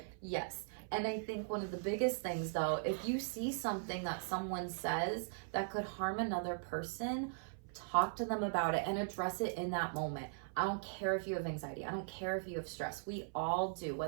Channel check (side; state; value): left; silent; 51 dB below the other